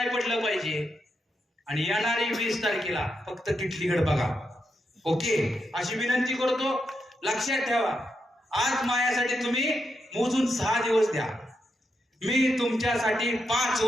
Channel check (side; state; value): both; normal; correlation 0.84